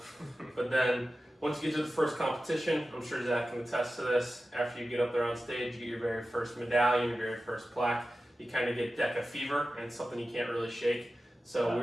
But then once you get to the first competition, I'm sure Zach can attest to this, after you get up there on stage, you get your very first medallion, your very first plaque, you kind of get DECA fever, and it's something you can't really shake. So we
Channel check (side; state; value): both; normal; correlation 0.94